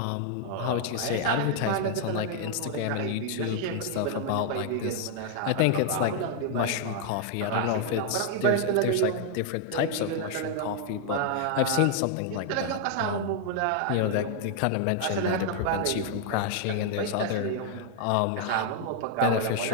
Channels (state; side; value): different; both; correlation 0.00